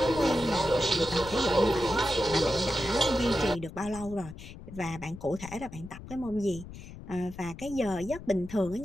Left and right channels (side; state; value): left; noise; rumble, 14 dB below the sound